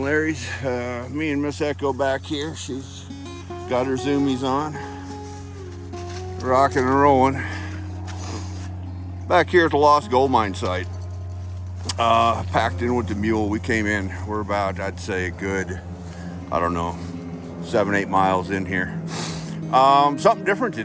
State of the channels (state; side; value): identical; both; correlation 1.00